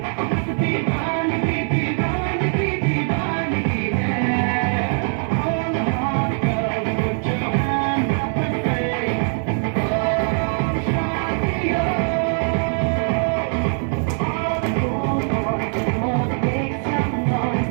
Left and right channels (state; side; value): silent; left; 55 dB below the other